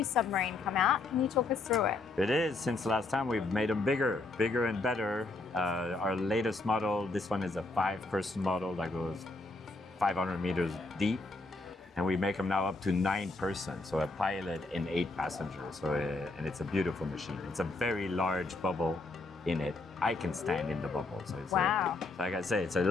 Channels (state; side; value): quieter; right; 3.3 dB